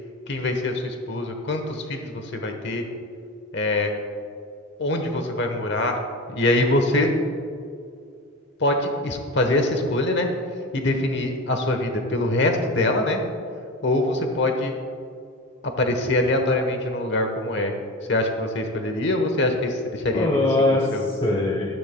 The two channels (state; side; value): normal; both; correlation 0.28